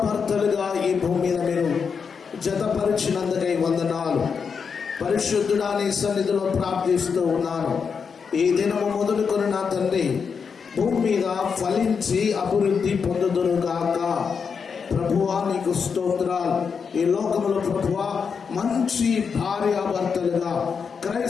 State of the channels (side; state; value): right; quieter; 6.0 dB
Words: ఈ భూమి మీద మీరు జతపరిచినందుకై వందనాలు. పరిశుద్ధుడా, నీ సన్నిధిలో ప్రార్థిస్తూ ఉన్నాను. ఈ దినము మొదలుకొని నా తండ్రి భూమి మీద ఫలించి అభివృద్ధి పొందుదురుగాక. ప్రభువా, నీకు స్తోత్రాలు. ఈ లోకములో ప్రభువా, మంచి భార్యాభర్తలుగా